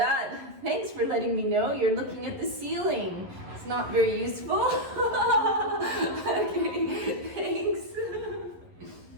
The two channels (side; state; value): left; late; 11 ms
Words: Thanks for letting me know. You're looking at the ceiling. It's not very useful. Okay, thanks.